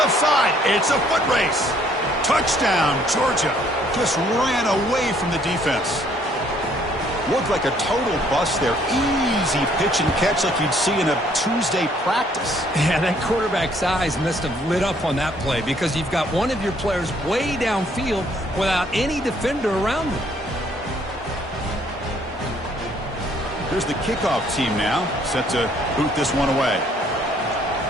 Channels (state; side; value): normal; both; correlation 0.64